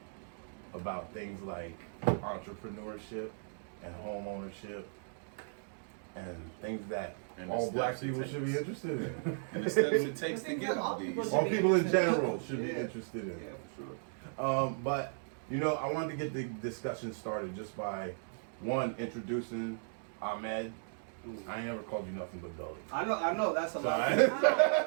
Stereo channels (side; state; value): left; silent; digital silence